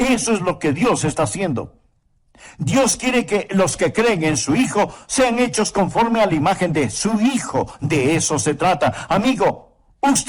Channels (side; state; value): both; identical; correlation 1.00